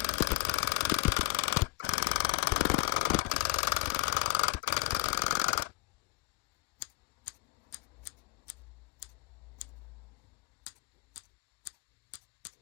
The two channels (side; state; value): right; quieter; 25.0 dB